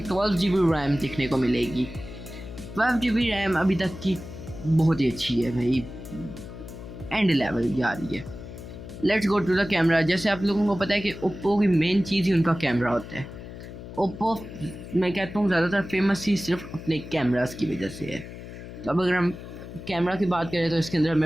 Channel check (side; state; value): left; noise; hum, 12 dB below the sound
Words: 12 GB RAM देखने को मिलेगी। 12 GB रैम अभी तक की बहुत ही अच्छी है भाई, एंड लेवल जा रही है। Let's go to the camera. जैसे आप लोगों को पता है कि ओप्पो की मेन चीज़ ही उनका कैमरा होता है। ओप्पो मैं कहता हूँ ज़्यादातर फेमस ही सिर्फ अपने कैमरास की वजह से है। तो अब अगर हम कैमरा की बात करें तो इसके अंदर